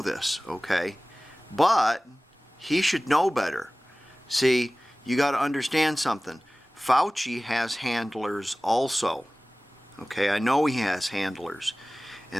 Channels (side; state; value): both; normal; correlation 0.98